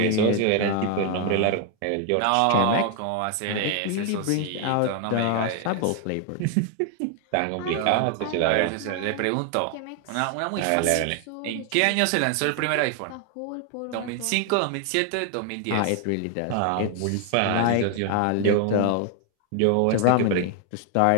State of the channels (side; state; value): both; different; correlation 0.00